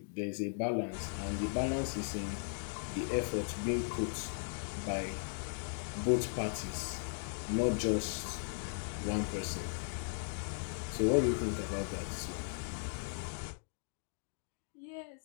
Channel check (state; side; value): silent; right; digital silence